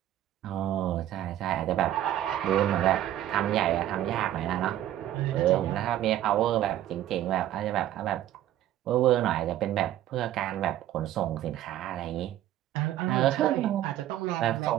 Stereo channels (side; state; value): left; quieter; 12.7 dB